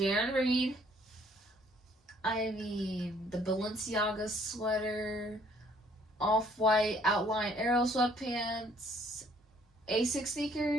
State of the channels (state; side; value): normal; both; correlation 0.62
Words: Reed. I mean, the Balenciaga sweater, off-white outline arrow sweatpants, A6